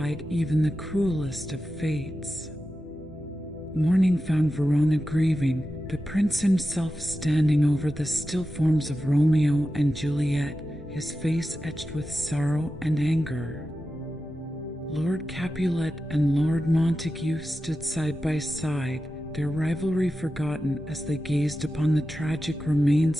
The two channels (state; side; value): normal; both; correlation 0.92